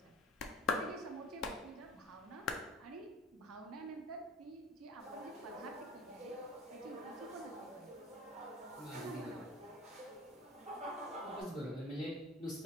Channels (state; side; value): normal; both; correlation 0.41